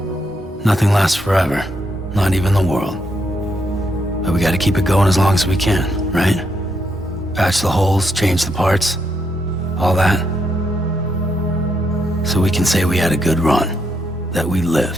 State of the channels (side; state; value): both; normal; correlation 0.78